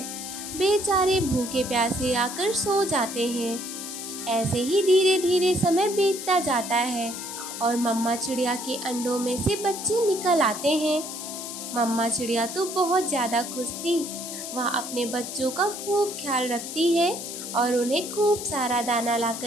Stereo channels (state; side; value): noise; left; hiss, 8 dB below the sound